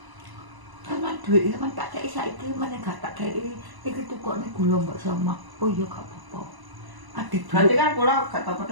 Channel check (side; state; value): left; late; 1.0 ms